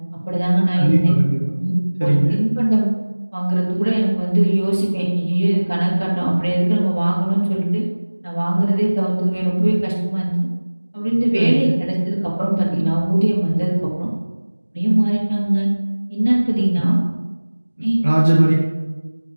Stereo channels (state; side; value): inverted; both; correlation -1.00